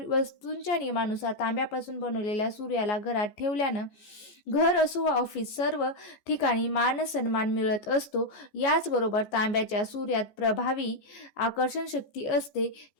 नियमानुसार तांब्यापासून बनवलेल्या सूर्याला घरात ठेवल्यानं घर असो वा ऑफिस सर्व ठिकाणी मान सन्मान मिळत असतो. याचबरोबर तांब्याच्या सूर्यात प्रभावी आकर्षण शक्ती असते.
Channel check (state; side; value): late; right; 14 ms